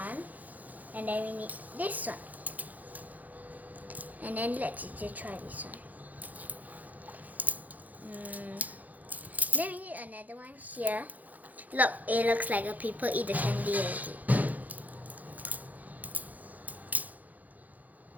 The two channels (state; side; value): late; left; 0.080 ms